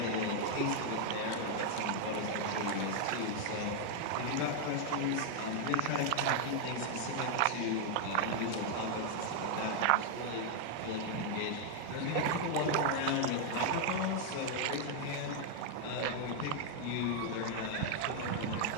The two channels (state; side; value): different; both; correlation 0.00